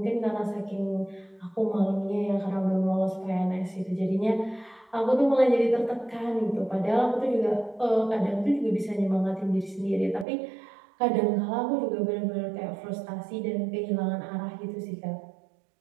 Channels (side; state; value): left; drops out; at 10.2 s